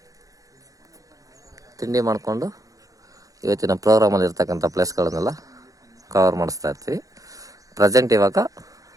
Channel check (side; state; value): left; late; 0.17 ms